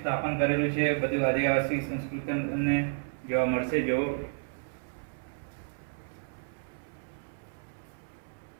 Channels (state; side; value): silent; left; 57 dB below the other